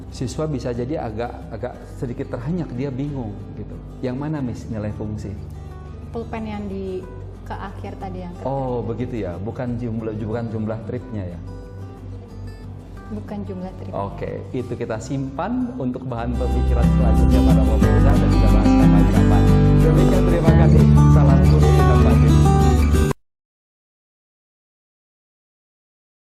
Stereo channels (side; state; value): both; identical; correlation 1.00